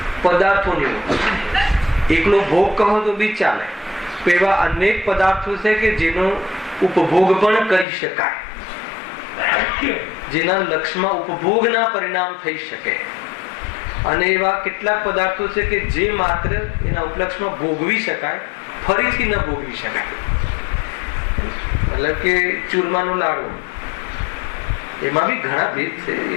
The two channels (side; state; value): right; drops out; at 7.9 s